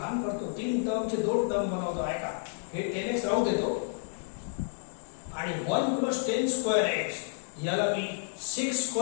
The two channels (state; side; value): silent; right; digital silence